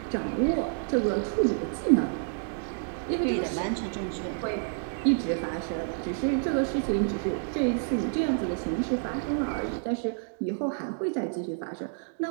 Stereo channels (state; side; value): silent; left; digital silence